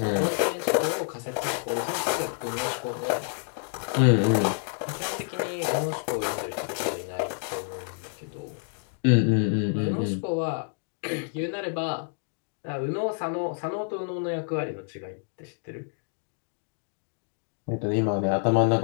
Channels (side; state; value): right; silent; 58 dB below the other